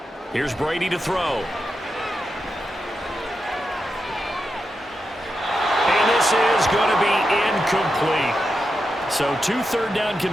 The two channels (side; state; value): both; normal; correlation 0.87